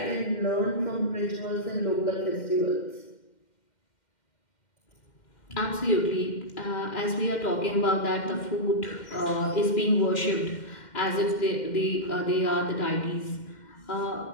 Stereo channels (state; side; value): late; right; 2.1 ms